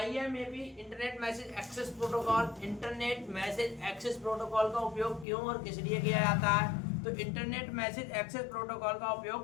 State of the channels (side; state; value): right; drops out; at 5.2 s